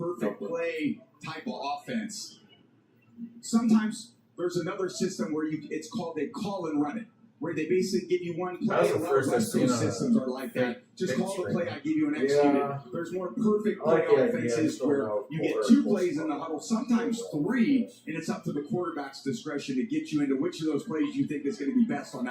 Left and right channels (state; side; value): identical; both; correlation 1.00